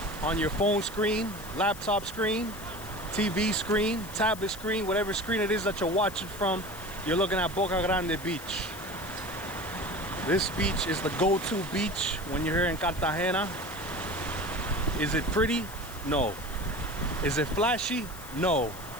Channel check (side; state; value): left; noise; hiss, 15 dB below the sound